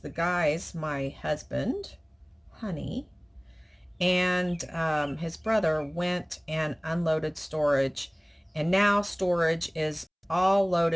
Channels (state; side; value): identical; both; correlation 1.00